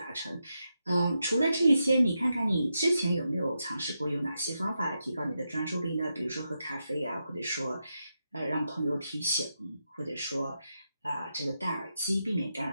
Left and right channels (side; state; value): both; inverted; correlation -0.86